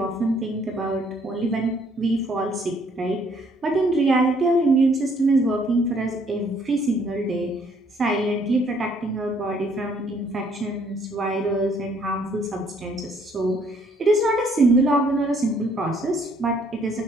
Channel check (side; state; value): both; normal; correlation 0.65